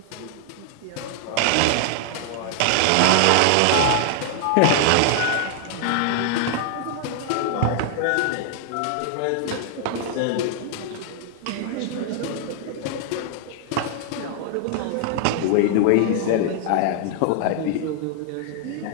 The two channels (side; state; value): both; different; correlation 0.00